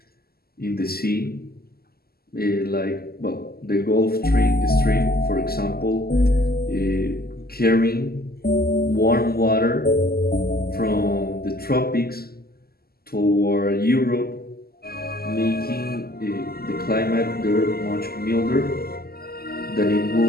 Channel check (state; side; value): late; right; 0.45 ms